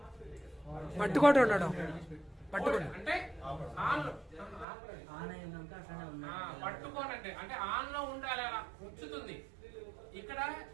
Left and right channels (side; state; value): left; drops out; at 4.7 s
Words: పట్టుకోవడం ఉండడం, అంటే పట్టుకోనంటే అంటే ఆన్ లో ఉండాలి, అలా ఉంచుతుంది. ఇక్కడ